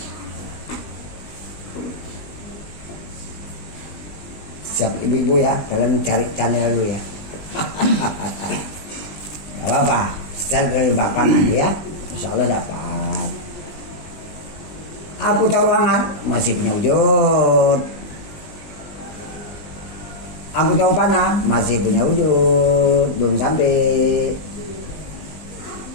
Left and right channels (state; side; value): late; right; 20 ms